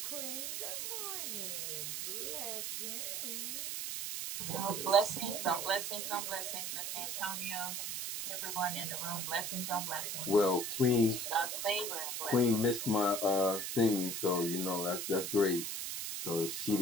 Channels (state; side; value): noise; right; hiss, 3 dB below the sound